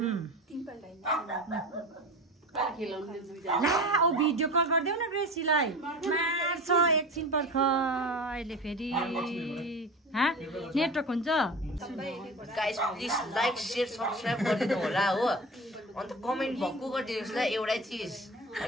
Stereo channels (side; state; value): both; normal; correlation 0.32